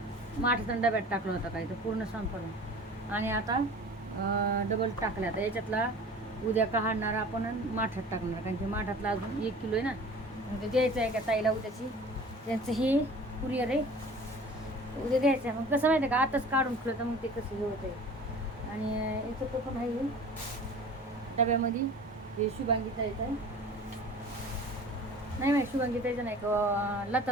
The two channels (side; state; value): both; normal; correlation 0.43